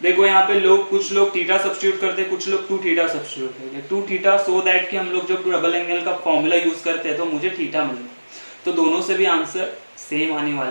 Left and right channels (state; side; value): inverted; both; correlation -1.00